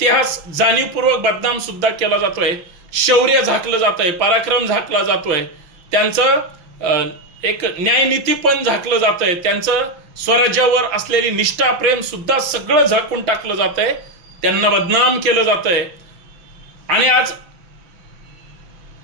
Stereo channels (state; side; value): late; left; 5.9 ms